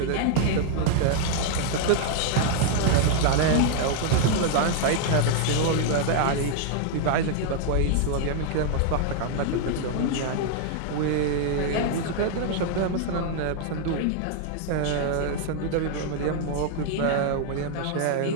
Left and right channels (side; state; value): both; different; correlation 0.00